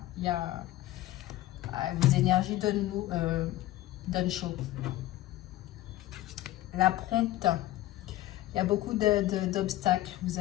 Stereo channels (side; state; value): right; quieter; 15.6 dB